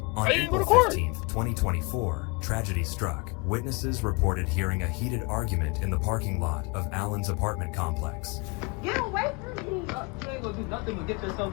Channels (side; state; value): right; quieter; 28.6 dB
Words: On April 15th, 2024, tragedy struck. Witnesses reported hearing a heated argument in the parking lot of Allen's apartment complex. Get away from me! You ain't gonna do nothing but get